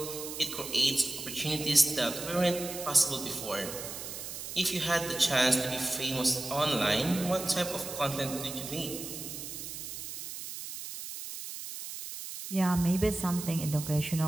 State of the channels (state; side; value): noise; right; hiss, 8 dB below the sound